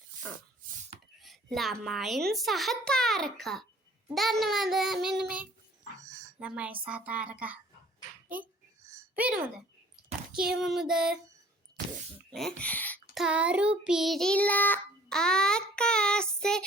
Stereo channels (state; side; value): normal; both; correlation 0.53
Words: ළමයින් සහ තාරකා. දන්නවද මෙන්න මේ ළමයි සහ තාරකා? පේනවද? කියවමුද? තරු පිරිලා ආකාසේ